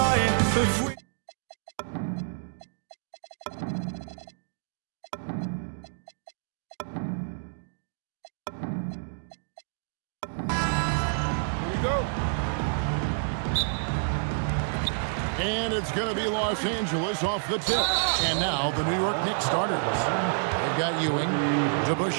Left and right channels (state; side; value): silent; left; digital silence